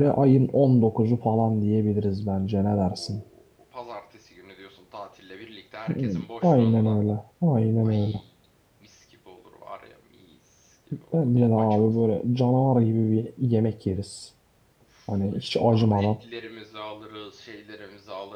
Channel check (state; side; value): identical; both; correlation 1.00